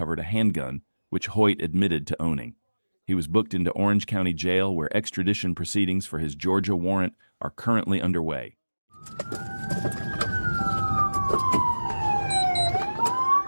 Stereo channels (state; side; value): inverted; both; correlation -1.00